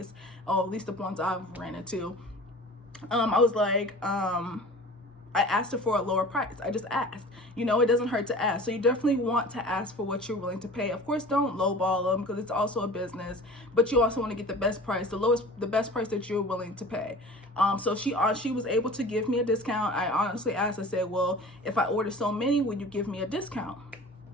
at least the ones I've ran into, I was like, I asked her for a lower price. I just asked. You know, it doesn't hurt to ask. So you definitely want to ask for what you're willing to pay. Of course, don't lowball them because it's also a business, but you also want to get the best price, the best price that you're willing to pay. So she was able to give me a discount. I honestly asked, I said, well, if I order so many, would you give me a discount?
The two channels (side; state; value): both; normal; correlation 0.41